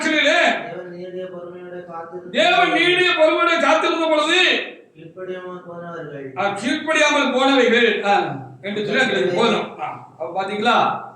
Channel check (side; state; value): both; identical; correlation 1.00